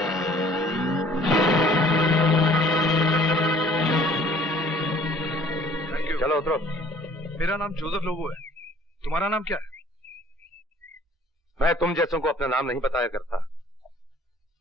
चलो उतरो। मेरा नाम जोसेफ लोबो है। तुम्हारा नाम क्या है? मैं तुम जैसों को अपना नाम नहीं बताया करता।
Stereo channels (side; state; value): both; normal; correlation 0.55